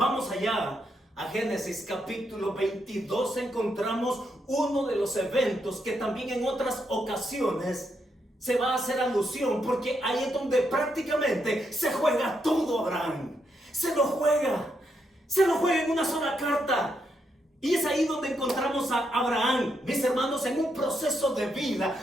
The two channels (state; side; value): normal; both; correlation 0.80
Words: allá a Génesis capítulo 22 encontramos uno de los eventos que también en otras ocasiones se va a hacer alusión, porque ahí es donde prácticamente se juega todo Abraham. Se lo juega en una sola carta. Y es ahí donde encontramos a Abraham, mis hermanos, en un proceso de